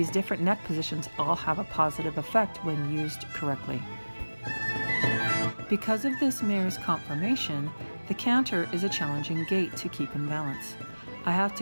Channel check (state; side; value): inverted; both; correlation -1.00